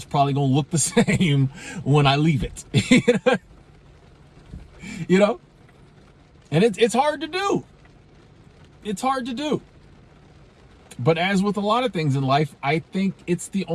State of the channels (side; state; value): both; identical; correlation 1.00